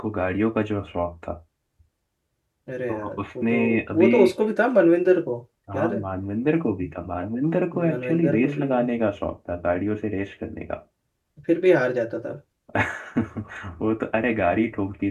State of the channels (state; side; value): identical; both; correlation 1.00